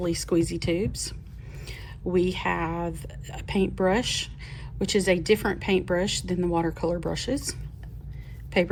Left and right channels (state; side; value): identical; both; correlation 1.00